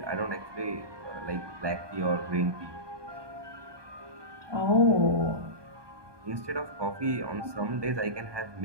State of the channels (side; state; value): left; late; 1.2 ms